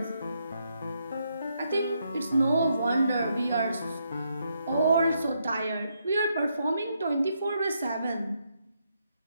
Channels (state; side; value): inverted; both; correlation -0.78